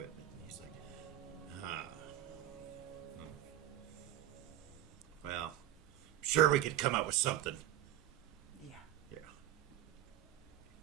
He's like, well, sure we could come up with something. Yeah. Yeah.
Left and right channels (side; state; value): left; quieter; 12.7 dB